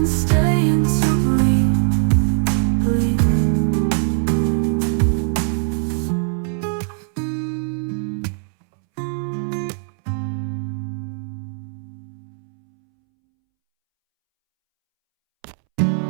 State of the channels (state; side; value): silent; left; 65 dB below the other